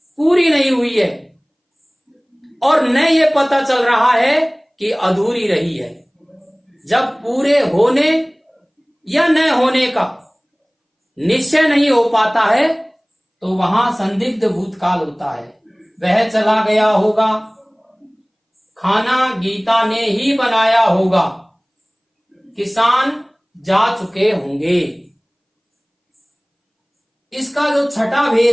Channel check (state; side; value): identical; both; correlation 1.00